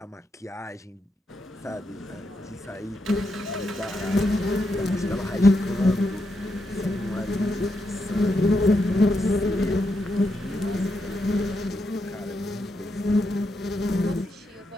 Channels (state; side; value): normal; both; correlation 0.83